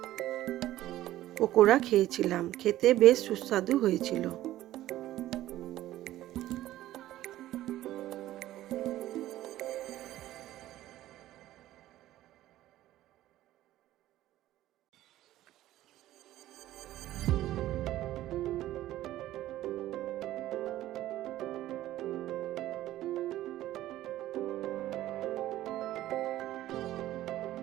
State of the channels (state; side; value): quieter; left; 14.4 dB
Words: পকোড়া খেয়েছিলাম, খেতে বেশ সুস্বাদু হয়েছিল।